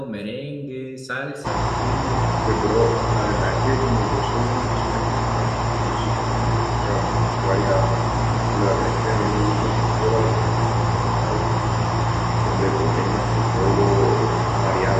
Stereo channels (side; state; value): both; identical; correlation 1.00